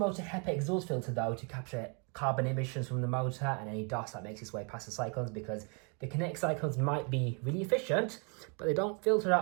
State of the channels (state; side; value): quieter; left; 36.0 dB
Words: HEPA exhaust filter though to capture carbon emissions from the motor and any dust that makes its way past the cyclones, because the Cinetic cyclones might be really efficient, but they don't filter